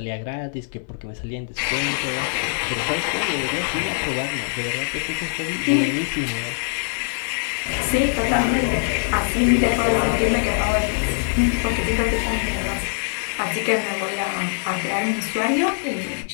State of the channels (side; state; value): right; silent; 60 dB below the other